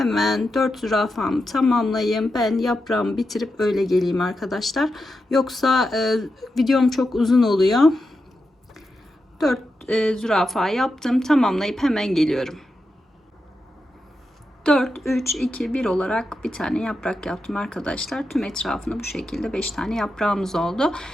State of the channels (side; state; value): both; normal; correlation 0.88